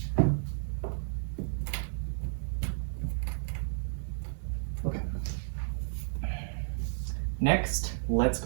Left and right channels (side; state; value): left; silent; digital silence